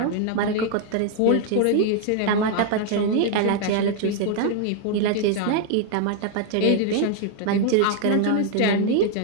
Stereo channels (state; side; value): different; both; correlation 0.00